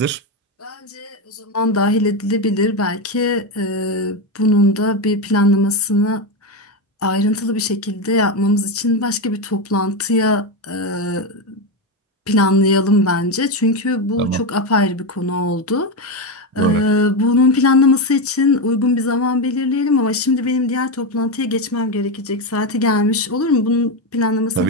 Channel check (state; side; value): normal; both; correlation 0.11